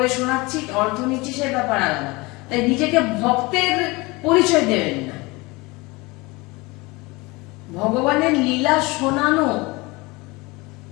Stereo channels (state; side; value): quieter; right; 23.9 dB